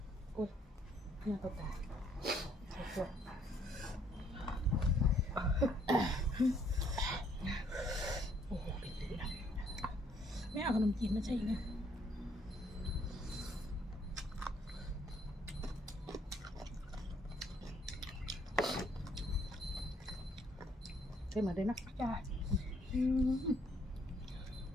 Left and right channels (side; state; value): both; normal; correlation 0.66